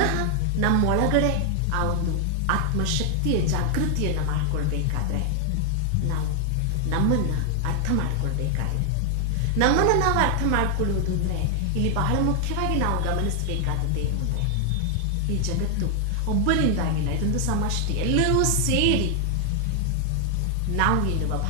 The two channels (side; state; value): both; different; correlation 0.00